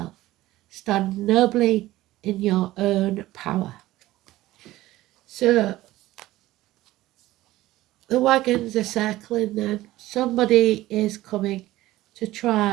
Stand nobly in your own power. So, the wagons are circling then. Somebody is coming to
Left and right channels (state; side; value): quieter; left; 16.5 dB